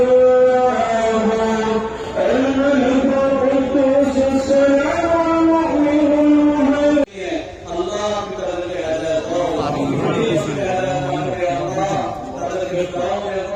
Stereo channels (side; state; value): both; identical; correlation 1.00